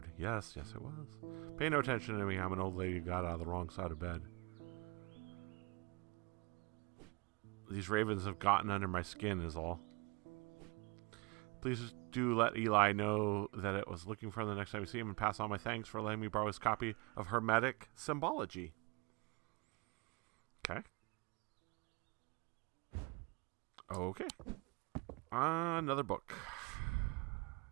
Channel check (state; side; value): quieter; left; 29.0 dB